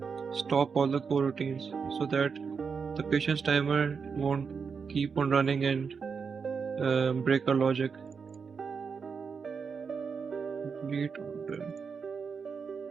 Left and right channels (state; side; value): quieter; left; 5.7 dB